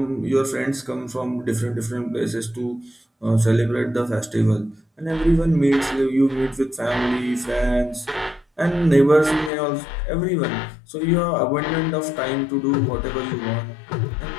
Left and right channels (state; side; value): drops out; right; at 9.5 s